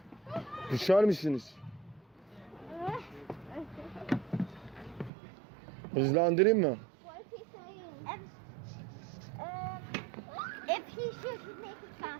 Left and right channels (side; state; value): left; drops out; at 5.1 s